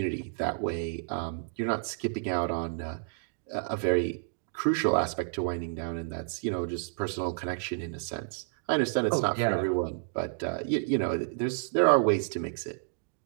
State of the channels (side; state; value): left; silent; digital silence